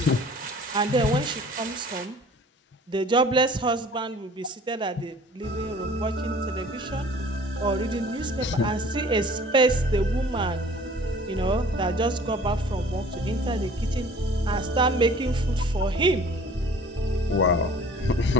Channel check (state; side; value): normal; both; correlation 0.49